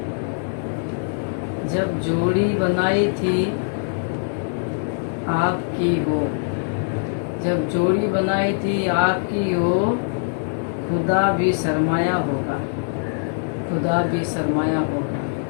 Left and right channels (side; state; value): right; silent; digital silence